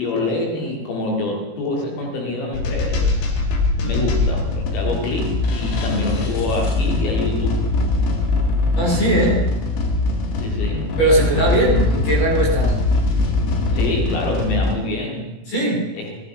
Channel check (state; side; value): late; right; 18 ms